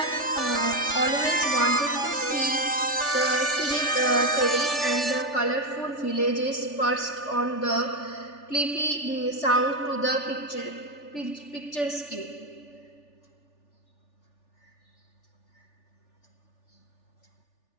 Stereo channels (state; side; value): late; right; 3.4 ms